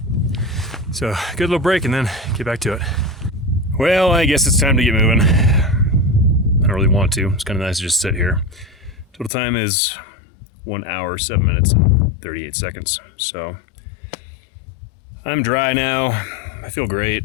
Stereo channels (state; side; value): drops out; right; at 9.3 s